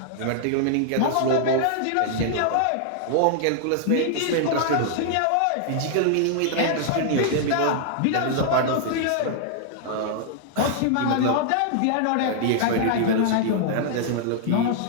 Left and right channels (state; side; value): different; both; correlation -0.01